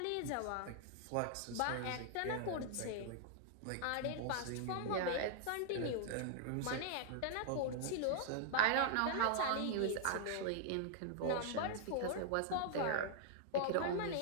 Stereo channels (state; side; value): different; both; correlation -0.01